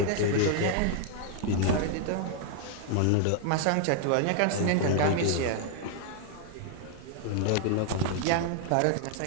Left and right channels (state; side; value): different; both; correlation 0.00